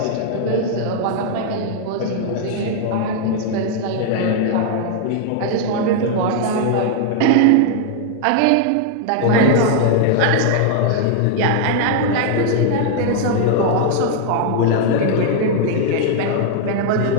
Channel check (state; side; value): different; both; correlation 0.00